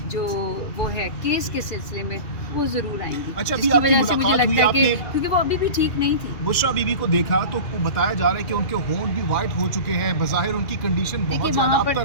جو وہ ہے کیس کے سلسلے میں وہ ضرور آئیں گی. اچھا، جس کی وجہ سے مجھے لگتا ہے کہ کیونکہ وہ ابھی بھی ٹھیک نہیں تھی. بشریٰ بی بی کو دیکھا تو بتایا جا رہا ہے کہ ان کے ہونٹ بھی وائٹ ہو چکے ہیں، بظاہر ان کی کنڈیشن دیکھیے بہت زیادہ وہاں پر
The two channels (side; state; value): right; late; 2.4 ms